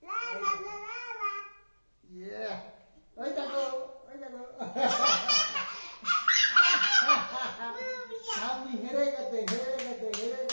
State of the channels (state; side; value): inverted; both; correlation -1.00